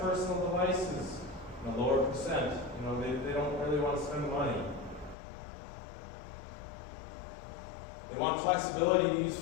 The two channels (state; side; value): drops out; right; at 5.2 s